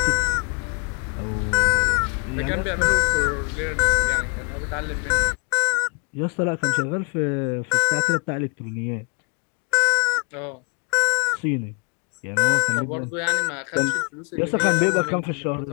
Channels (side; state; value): right; quieter; 35.4 dB